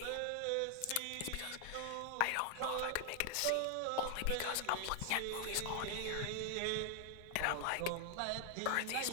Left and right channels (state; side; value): different; both; correlation 0.00